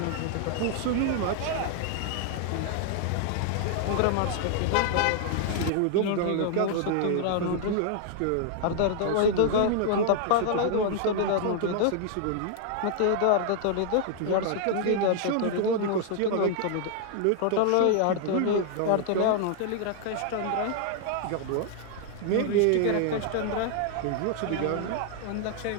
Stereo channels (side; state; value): both; different; correlation 0.00